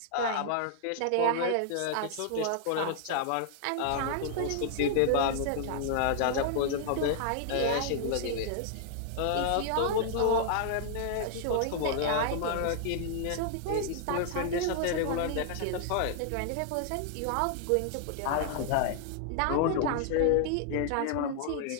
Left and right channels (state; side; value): different; both; correlation -0.01